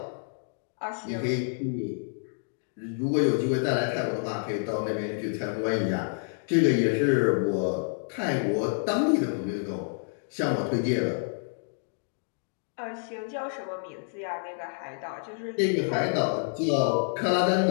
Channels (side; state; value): right; silent; digital silence